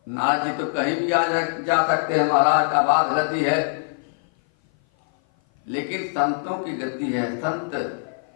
नारद जी तो कहीं भी जा सकते हैं, महाराज का बात गति है, लेकिन संतों की गति है। संत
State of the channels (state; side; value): silent; right; 56 dB below the other